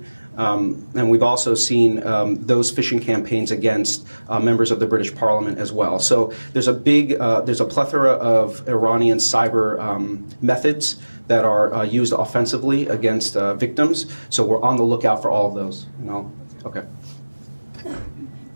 And we've also seen those phishing campaigns against members of the British Parliament as well. So there's a plethora of Iranian cyber methods that are used offensively against victims. So we're on the lookout for all of those. Okay.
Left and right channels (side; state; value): both; inverted; correlation -1.00